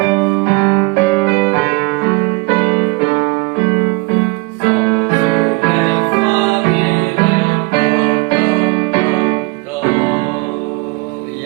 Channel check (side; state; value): left; quieter; 25.5 dB